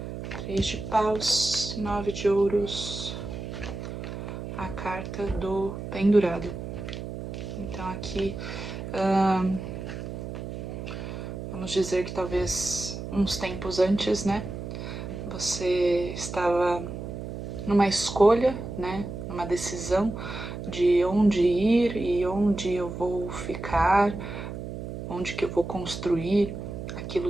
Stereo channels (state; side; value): noise; right; hum, 7 dB below the sound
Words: 3 de paus, 9 de ouros, a carta do pendurado. Então aqui vamos dizer que talvez uns tempos antes, né, você estava numa escolha, né, numa decisão de onde ir e onde eu vou ficar, onde que eu vou construir